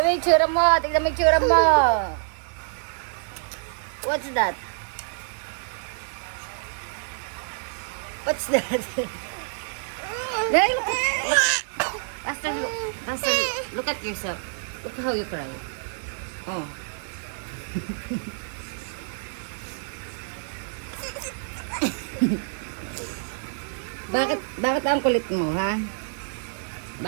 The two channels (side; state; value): left; silent; digital silence